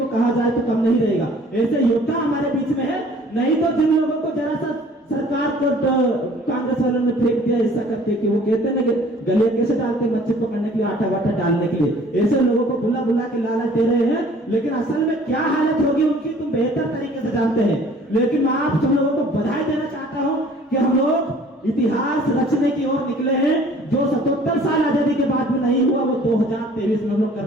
कहा जाए तो कम नहीं रहेगा, ऐसे योद्धा हमारे बीच में है। नहीं तो जिन लोगों को जरा सा सरकार को कांग्रेस वालों ने फेंक दिया ऐसा करके कि वो कहते हैं ना कि गले कैसे डालते हैं मच्छी पकड़ने के लिए, आटा वाटा डालने के लिए, ऐसे लोगों को बुला बुला के लालच दे रहे हैं। लेकिन असल में क्या हालत होगी उनकी तुम बेहतर तरीके से जानते हैं। लेकिन मैं आप सब लोगों को बधाई देना चाहता हूं कि हम लोग इतिहास रचने की ओर निकले हैं। जो 77 साल आजादी के बाद में नहीं हुआ वो 2023 में हम लोग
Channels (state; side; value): normal; both; correlation 0.53